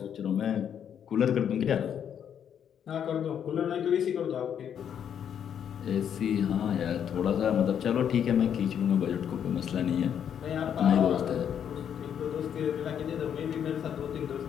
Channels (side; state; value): right; quieter; 8.7 dB